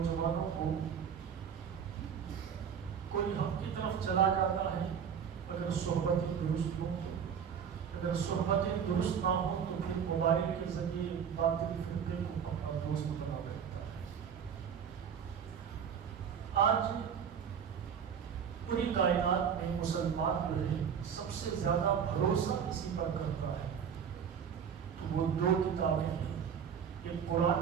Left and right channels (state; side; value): quieter; left; 7.6 dB